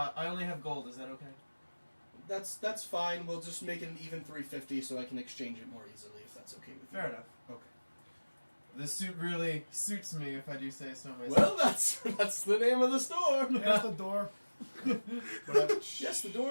only have gold. Is that okay? that's fine. We'll just make it an even 350 so I can exchange it more easily if that's okay with you. Fair enough. Okay. This suit really suits me, if I do say so myself. Well, that's the name of the store. There's the door. Yes, the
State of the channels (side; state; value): both; inverted; correlation -1.00